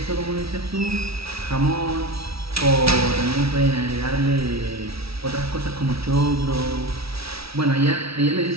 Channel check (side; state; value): left; late; 0.76 ms